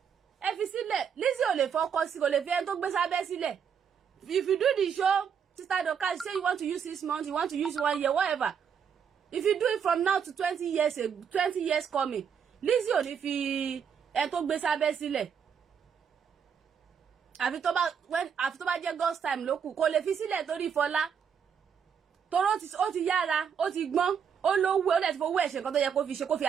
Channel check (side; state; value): left; quieter; 7.3 dB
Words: ẹ fi sílẹ̀ Lizzy ò lè fọkọ sí kò lè fi ẹni tó gbé sábẹ́ sílẹ̀ if you do the show Sister Dorcas say you want to use 6 months you want to use 1 year whatever if you do it from now to 20 years coming Lizzy ò ní fi ẹni tó gbé sábẹ́ sílẹ̀ àfi tó bá jẹ́ God's time ló kù kò lè fi sílẹ̀ torí Fọlá toró ó ti yára ó ti gbọ́n ó lówó ó dẹ̀ ti fowó ẹ̀ ṣe nǹkan tó yẹ kó fi ṣe kó fi